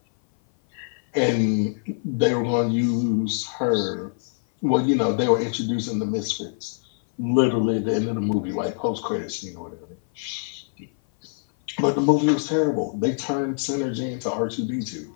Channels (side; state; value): right; silent; 57 dB below the other